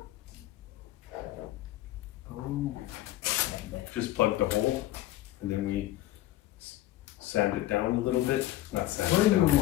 Oh, like that. Just plug the hole, and then we sand it down a little bit. Not sand Where it down, you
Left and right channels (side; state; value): right; quieter; 15.4 dB